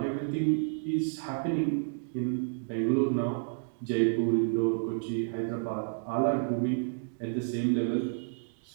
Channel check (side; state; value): left; silent; digital silence